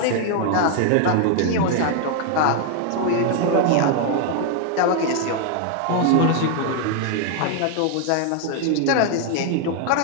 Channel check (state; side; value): different; both; correlation 0.00